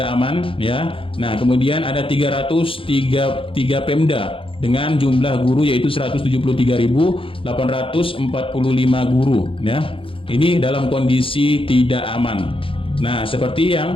aman ya. Nah, kemudian ada 303 Pemda dengan jumlah guru yaitu 173.845 guru ya. Ini dalam kondisi tidak aman. Nah, seperti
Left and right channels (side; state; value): right; late; 0.26 ms